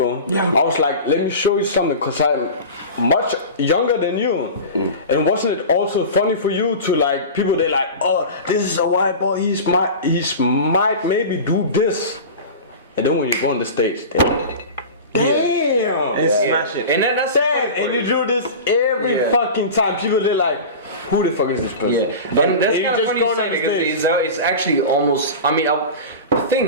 I was like, let me show you something, because I'm much younger than you. And wasn't it also funny for you to like, people they like, oh, this is a white boy, he might maybe do this. And then when you go on the stage, damn! And smash it. And that's Damn, and you do this every fucking time. People they're like, who the fuck is this person? Yeah, and that's you kind of just funny go you say on the because stage. it's actually almost. I mean, the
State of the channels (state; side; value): inverted; both; correlation -0.31